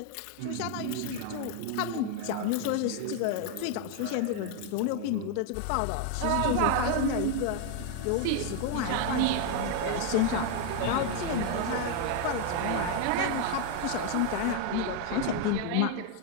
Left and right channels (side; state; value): both; different; correlation 0.01